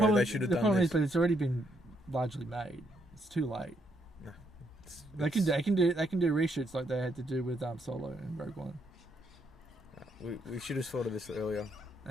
they should have done this. The problem is, but it's already been largely made. It's too late. No, they can do reshoots like they had to do with Solo and Rogue One. We should have thought of this earlier.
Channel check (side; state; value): both; normal; correlation 0.74